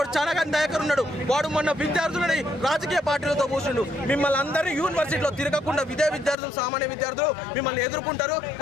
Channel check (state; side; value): drops out; right; at 6.4 s